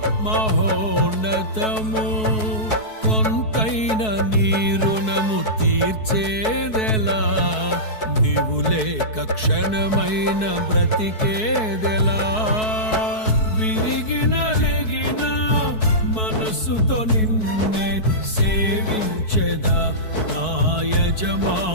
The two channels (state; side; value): late; right; 4.6 ms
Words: మహోన్నతము. కొంతైన నీ రుణము తీర్చేదెలా, నీవు లేక క్షణమైన బ్రతికేదెలా. విరిగిన నలిగిన మనసుతో నిన్నే సేవించెదా నా